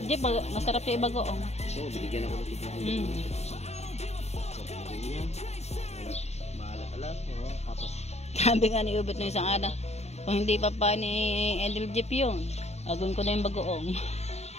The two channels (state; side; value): late; right; 0.31 ms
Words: Masarap yung ibagoong. Oo, binigyan ako ng tubig. Maalat-alat. Tapos. Sabi nga ni Ubet ng isang araw, kung hindi pa pa ni Edel Jeep yun, agun ko na yung bagoong.